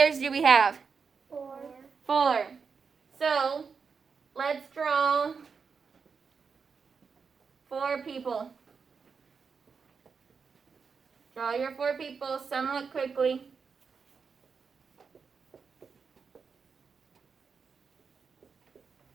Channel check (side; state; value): left; quieter; 5.6 dB